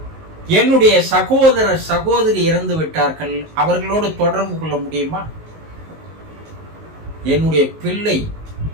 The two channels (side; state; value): left; late; 19 ms